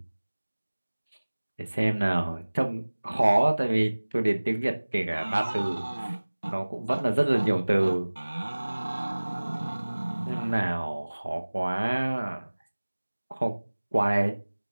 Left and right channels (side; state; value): both; inverted; correlation -1.00